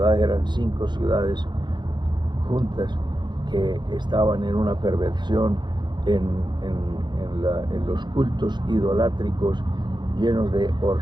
eran 5 ciudades juntas que estaban en una perversión, en los cultos idolátricos, llenos de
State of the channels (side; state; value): left; late; 0.21 ms